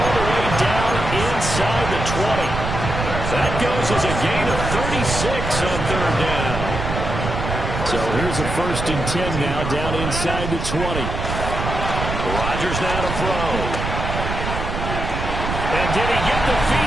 the way down inside the 20. That goes as a gain of 36 on 3rd down. So here's a 1st and 10 now down inside the 20. Rodgers now to throw. And did he get the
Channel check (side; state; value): right; noise; rumble, 4 dB below the sound